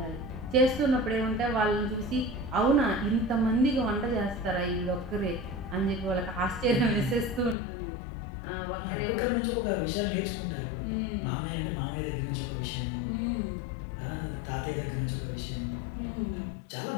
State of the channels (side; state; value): right; drops out; at 7.6 s